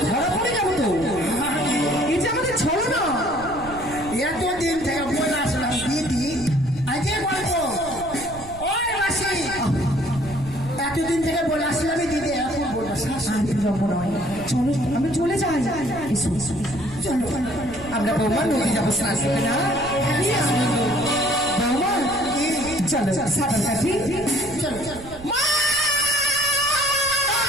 ধরা পড়ে যাবো তো। এই যে আমাদের ছলো না। এতদিন থেকে বলে আসলাম দিদি, আজকে বলবো ওই মাসি। এতদিন থেকে বলে আসলাম দিদি, এখন বলবো শাশুড়ি। আমি যাবো নয়, চলো আমি চলে যাই। এসো এসো, চলো আমরা বৌমা নদী যাবো স্নান করতে না। বৌমা চলো সাঁতার কাটি। চলো চলো।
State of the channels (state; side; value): noise; right; rumble, 16 dB below the sound